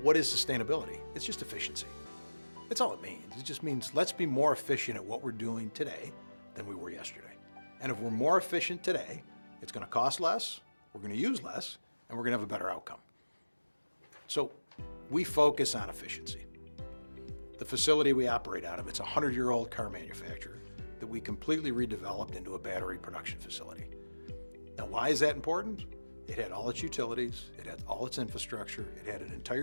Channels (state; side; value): inverted; both; correlation -1.00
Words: is sustainability? It's just efficiency. That's all it means. It just means let's be more efficient at what we're doing today than we were yesterday. And if we're more efficient today, it's going to cost less, we're going to use less, and we're going to have a better outcome. So we focus on efficiency. The facility we operate out of, it's a 100-year-old car manufacturer that we completely redeveloped into a battery production facility. Now, why is that important? It had all its utilities, it had all its infrastructure, it had an